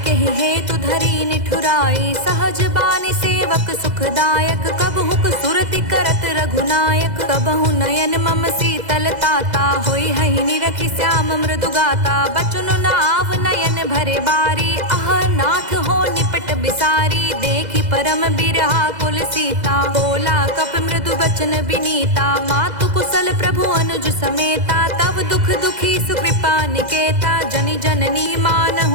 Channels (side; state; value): left; late; 2.0 ms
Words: केहि हेतु धरी निठुराई। सहज बानी सेवक सुखदायक कबहुक सुरति करत रघुनायक। कबहु नयन मम शीतल ताता होई हहि निरखि श्याम मृदु गाता। बचन नाव नयन भरे बारी आह नाथ हो निपट बिसारी। देखी परम बिरहा कुल सीता बोला कप मृदु बचन बिनीता। मातु कुशल प्रभु अनुज समेता तब दुख दुखी सुकृपा निकेता। जनि जननी